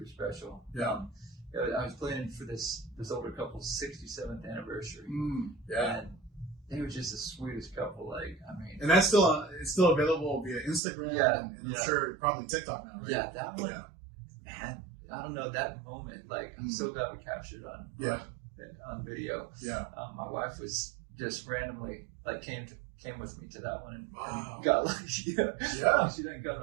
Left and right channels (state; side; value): drops out; left; at 10.8 s